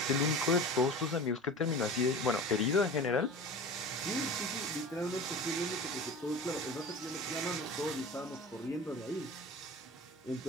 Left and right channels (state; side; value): normal; both; correlation 0.35